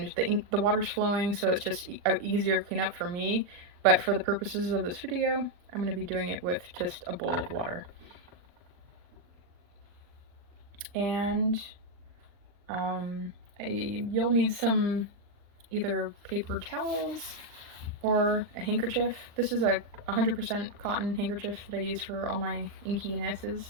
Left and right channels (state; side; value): late; left; 40 ms